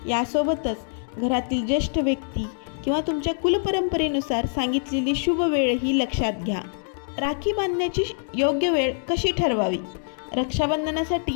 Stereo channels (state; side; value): silent; right; digital silence